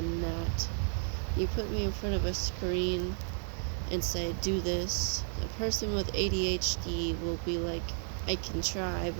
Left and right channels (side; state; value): left; silent; 56 dB below the other